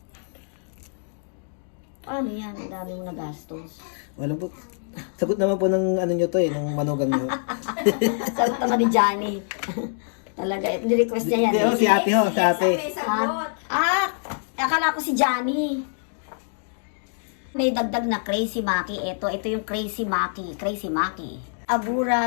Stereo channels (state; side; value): silent; right; digital silence